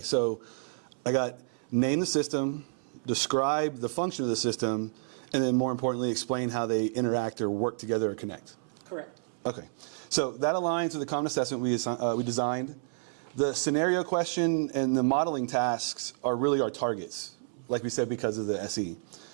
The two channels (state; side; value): silent; left; 58 dB below the other